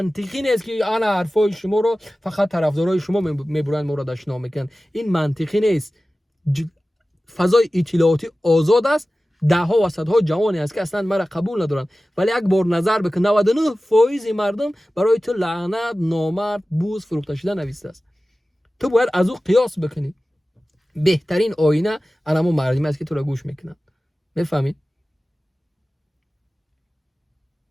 نیست که انا حرفای شما رو فقط طرفدارای شما میبرن ما رو دشنام میکنن. این منطقی نیست. فضای اطلاعاتی آزاد است، ده ها و صدها جوانی است که اصلا مرا قبول ندارن، ولی یک بار نظر بکن 99% مردم برای تو لعنت، نامرد، بوز، فروخته شده نوشته است. تو باید از او قیاس بکنی. بهترین آینه انمو مردمی است که تو را گوش میکنن. میفهمی؟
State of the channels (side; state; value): both; normal; correlation 0.96